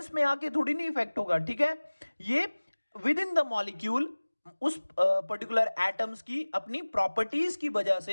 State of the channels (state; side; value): inverted; both; correlation -1.00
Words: में आके थोड़ी नहीं इफेक्ट होगा। ठीक है, ये विद इन द मॉलिक्यूल उस पर्टिकुलर एटम्स की अपनी प्रॉपर्टीज की वजह